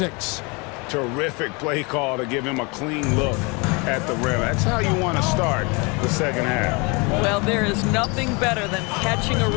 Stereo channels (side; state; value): right; quieter; 29.2 dB